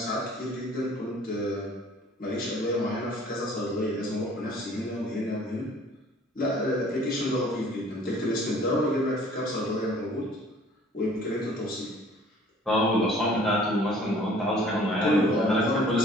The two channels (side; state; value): both; normal; correlation 0.53